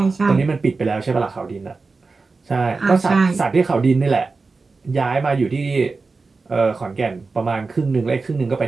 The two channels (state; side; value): quieter; left; 4.1 dB